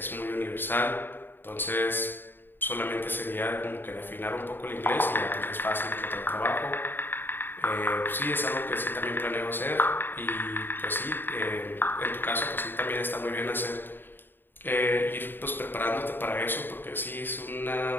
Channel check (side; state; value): right; late; 0.096 ms